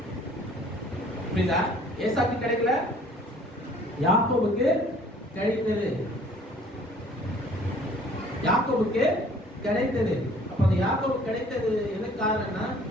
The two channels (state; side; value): normal; both; correlation 0.54